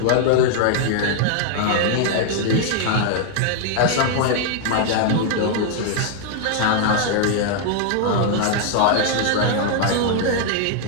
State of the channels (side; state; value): both; different; correlation 0.00